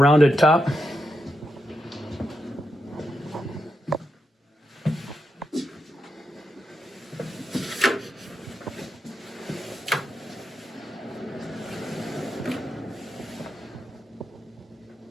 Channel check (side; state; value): both; normal; correlation 0.85